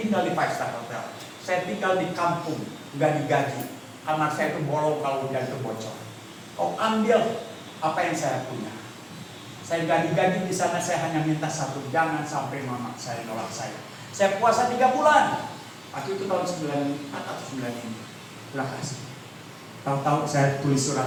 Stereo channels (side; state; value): both; identical; correlation 1.00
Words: di 5-star hotel. Saya tinggal di kampung, nggak digaji. Kamar saya itu bolong kalau hujan itu bocor. Kau ambil apa yang saya punya. Saya nggak digaji di sana, saya hanya minta satu, jangan sampai mama saya nolak saya. Saya puasa 3 bulan. Waktu itu tahun 94 atau 95. Terima kasih. Tahu-tahu saya tulis